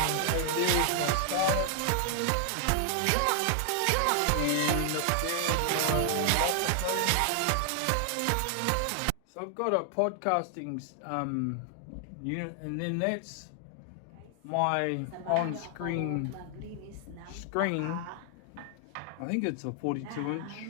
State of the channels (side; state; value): both; different; correlation 0.00